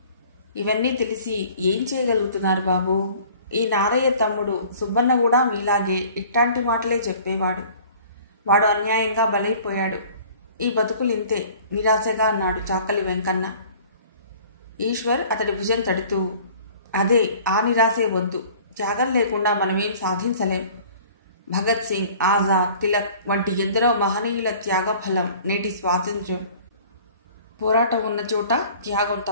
ఇవన్నీ తెలిసి ఏం చేయగలుగుతున్నారు బాబు? ఈ నారయ్య తమ్ముడు సుబ్బన్న కూడా మీలాగే ఇట్లాంటి మాటలే చెప్పేవాడు. వాడు అన్యాయంగా బలైపోయాడు. ఈ బతుకులింతే నిరాశగా అన్నాడు చాకలి వెంకన్న. ఈశ్వర్ అతడి భుజం తడుతూ, అదే, ఆ నిరాశే వద్దు. త్యాగం లేకుండా మనమేం సాధించలేం. భగత్ సింగ్, ఆజాద్, తిలక్ వంటి ఎందరో మహనీయుల త్యాగ ఫలం నేటి స్వాతంత్ర్యం. పోరాటం ఉన్న చోట త్యాగం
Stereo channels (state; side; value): inverted; both; correlation -0.49